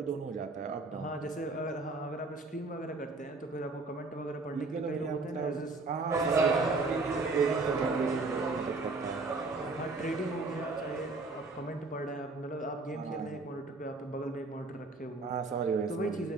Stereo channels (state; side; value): quieter; left; 3.6 dB